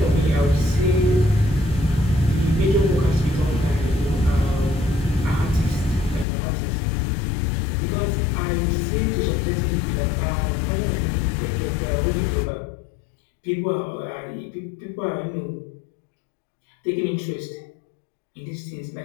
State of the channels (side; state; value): right; drops out; at 6.2 s